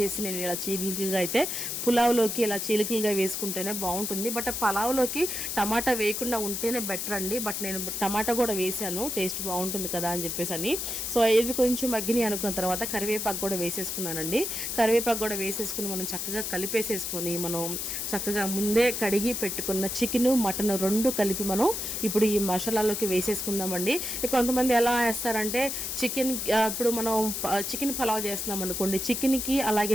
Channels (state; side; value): noise; left; hiss, 3 dB below the sound